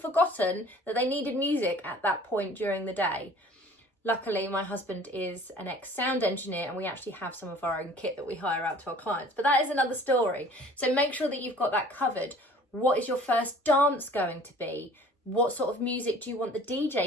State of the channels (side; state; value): both; normal; correlation 0.49